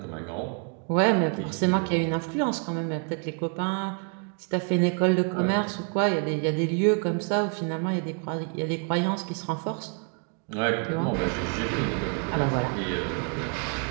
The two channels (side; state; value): left; quieter; 39.3 dB